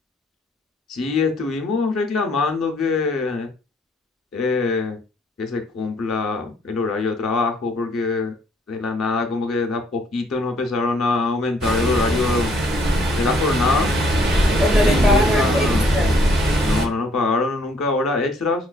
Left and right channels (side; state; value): both; normal; correlation 0.64